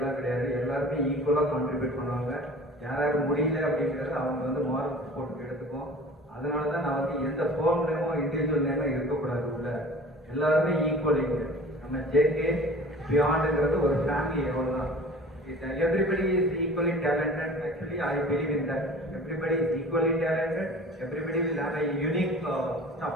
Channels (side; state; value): both; normal; correlation 0.43